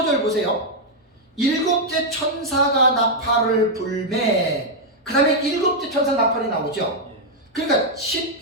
보세요. 일곱째 천사가 나팔을 불매. 그 다음에 일곱째 천사 나팔이 나오죠. 그러니까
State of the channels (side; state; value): both; normal; correlation -0.02